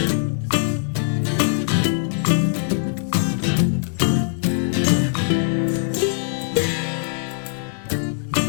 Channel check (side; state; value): right; silent; digital silence